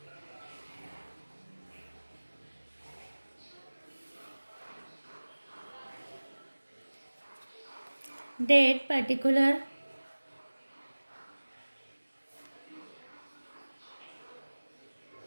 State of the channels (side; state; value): both; inverted; correlation -1.00